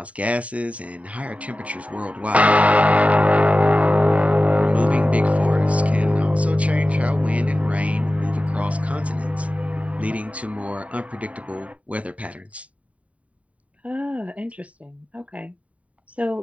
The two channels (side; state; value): left; late; 0.067 ms